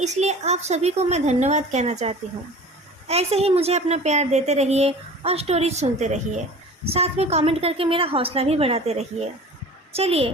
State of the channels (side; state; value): both; normal; correlation 0.41